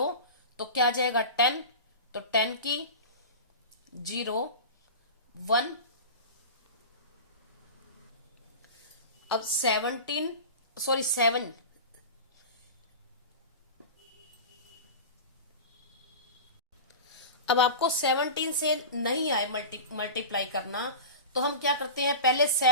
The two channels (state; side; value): inverted; both; correlation -0.30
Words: तो क्या आ जाएगा 10, तो 10 की 0 1। अब 7 अब आपको 17 से नहीं आए मल्टीप्लाई करना, तो हम क्या करते हैं पहले